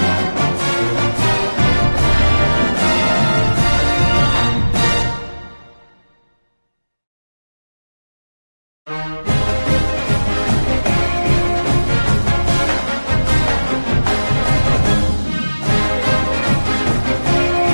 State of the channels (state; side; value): inverted; both; correlation -1.00